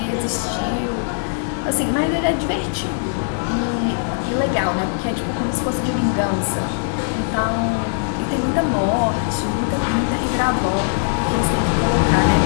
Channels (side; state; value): right; silent; digital silence